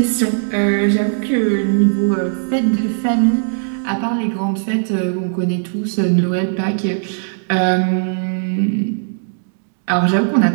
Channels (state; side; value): silent; left; digital silence